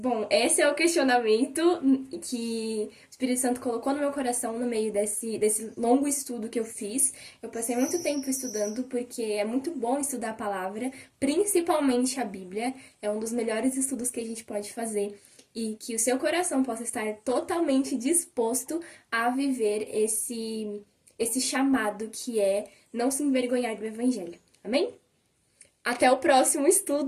esse é o questionamento que o Espírito Santo colocou no meu coração no meio desse longo estudo que eu fiz. Eu passei muito tempo estudando porque é muito bom estudar a palavra, principalmente a Bíblia. É um dos melhores estudos que a gente pode fazer. E que o seu coração possa estar totalmente disposto a viver esse chamado que é não se envergonhar do Evangelho. Amém? Até o próximo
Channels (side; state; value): both; identical; correlation 1.00